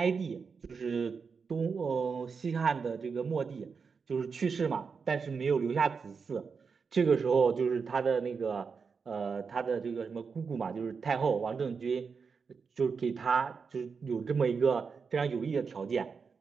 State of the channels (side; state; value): left; quieter; 5.5 dB